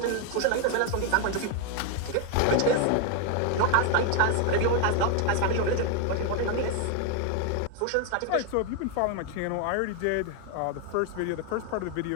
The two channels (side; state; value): both; different; correlation 0.01